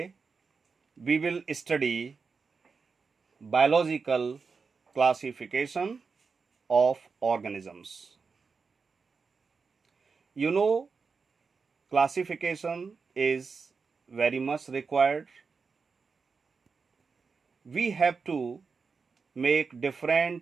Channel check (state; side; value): quieter; left; 5.0 dB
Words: we will study biological classification of organisms. You know, classification is very much required. We have to make